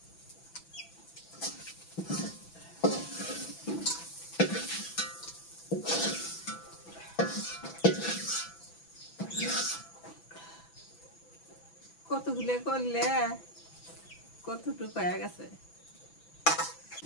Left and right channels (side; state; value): right; late; 6.0 ms